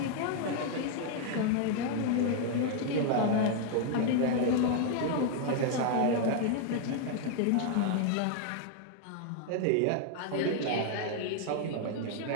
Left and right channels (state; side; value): different; both; correlation 0.00